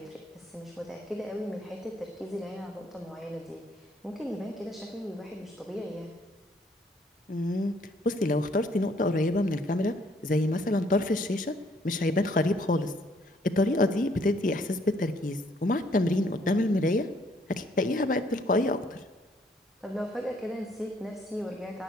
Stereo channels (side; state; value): both; normal; correlation 0.65